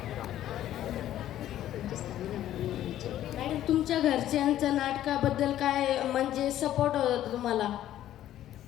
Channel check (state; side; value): quieter; right; 12.5 dB